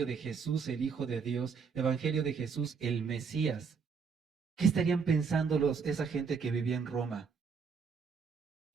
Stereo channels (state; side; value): quieter; left; 5.6 dB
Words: de Jesús, el Hijo de Dios, evangelio de Jesús, el Mesías, ¿qué estarían pensando esa gente que vivía en Roma?